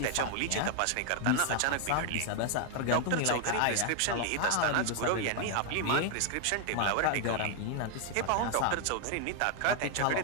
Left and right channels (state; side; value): different; both; correlation 0.00